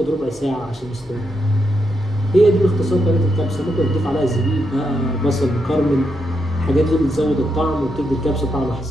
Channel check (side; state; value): both; normal; correlation 0.82